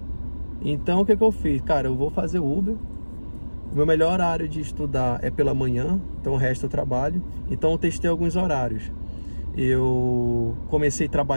Então o que eu fiz? Cara, eu vou fazer Uber. O meu melhor horário de estudar é pela manhã, então o resto eu trabalho. Então eu testei alguns horários. Eu comecei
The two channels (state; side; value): inverted; both; correlation -1.00